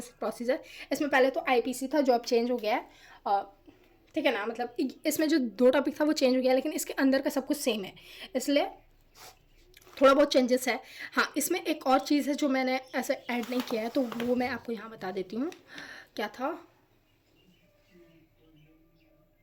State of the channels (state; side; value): identical; both; correlation 1.00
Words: procedure. इसमें पहले तो आईपीसी था जो अब चेंज हो गया है, ठीक है ना। मतलब इसमें जो 2 टॉपिक था वो चेंज हो गया, लेकिन इसके अंदर का सब कुछ सेम है, इसलिए थोड़ा बहुत चेंजेस है। हाँ, इसमें एक और चीज़ है जो मैंने ऐसे ऐड नहीं किया है, तो वो मैं आपको यहाँ बता देती हूँ। क्या था,